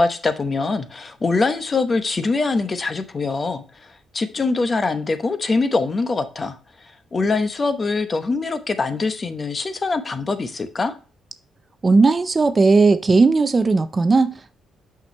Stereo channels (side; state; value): both; normal; correlation 0.88